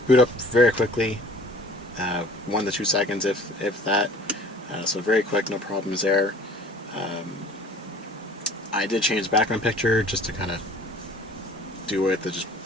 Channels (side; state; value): both; normal; correlation 0.48